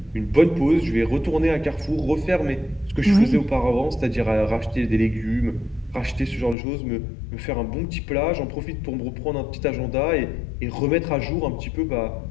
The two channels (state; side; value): drops out; right; at 6.6 s